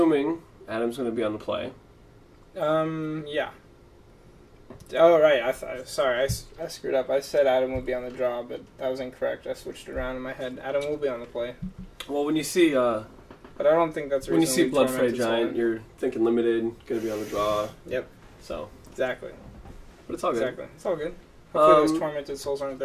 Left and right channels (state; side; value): identical; both; correlation 1.00